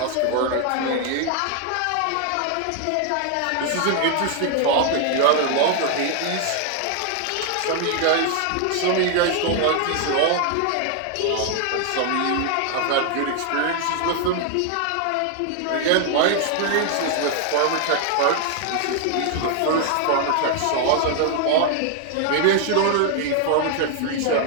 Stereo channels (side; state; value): both; different; correlation 0.00